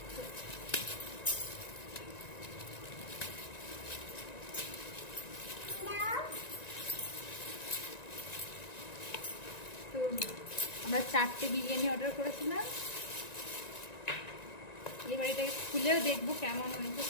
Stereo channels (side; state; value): right; late; 1.9 ms